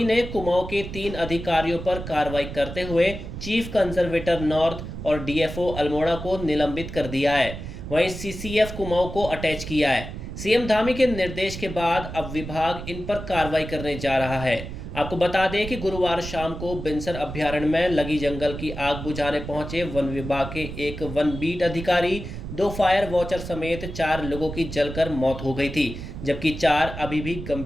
ने कुमाऊं के 3 अधिकारियों पर कार्रवाई करते हुए चीफ कंजर्वेटर नॉर्थ और डीएफओ अल्मोड़ा को निलंबित कर दिया है। वहीं सीसीएफ कुमाऊं को अटैच किया है। सीएम धामी के निर्देश के बाद अब विभाग इन पर कार्रवाई करने जा रहा है। आपको बता दें कि गुरुवार शाम को बिनसर अभ्यारण्य में लगी जंगल की आग बुझाने पहुंचे वन विभाग के एक वन बीट अधिकारी, 2 फायर वॉचर समेत 4 लोगों की जलकर मौत हो गई थी, जबकि 4 अभी भी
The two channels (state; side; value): noise; right; rumble, 9 dB below the sound